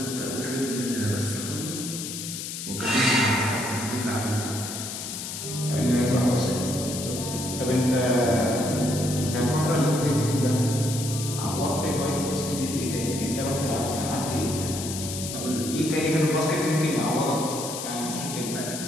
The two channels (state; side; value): noise; left; hiss, 7 dB below the sound